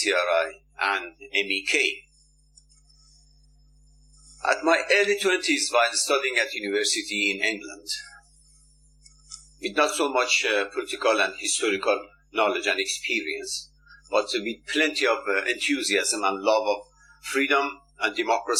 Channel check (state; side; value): identical; both; correlation 1.00